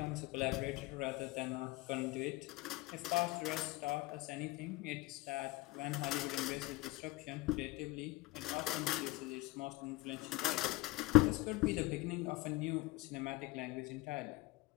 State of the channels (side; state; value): right; quieter; 20.3 dB